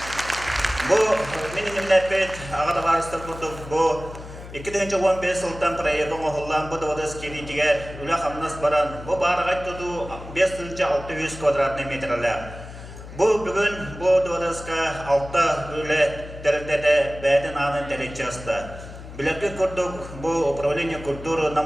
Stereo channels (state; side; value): noise; left; hum, 14 dB below the sound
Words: Бұл менің ләпет ағада барыстыр құрдық. Бұл 2015 жылдан проектің оғылан бұл даварыз келетігер үләқ амнас баран. Бұл барығайт тұду 5,600 квадратный метрлер. Бұл бүгін бұл даварызға 6 үләт дәрілдәді бәдін анын дәрет жасты. Білерге көрдік, бұл управление культуры